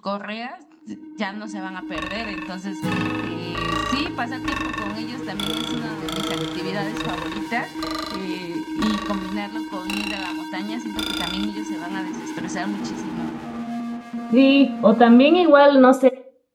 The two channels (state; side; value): identical; both; correlation 1.00